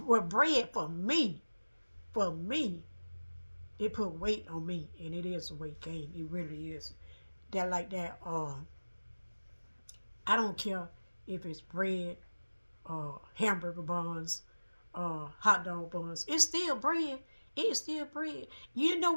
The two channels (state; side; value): inverted; both; correlation -1.00